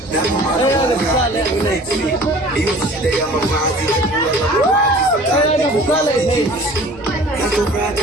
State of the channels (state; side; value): noise; right; rumble, 21 dB below the sound